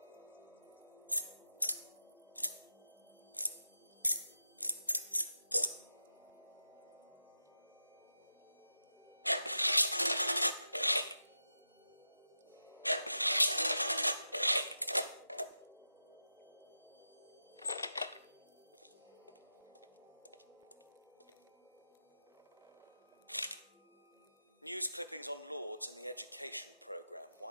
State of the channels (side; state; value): both; inverted; correlation -0.92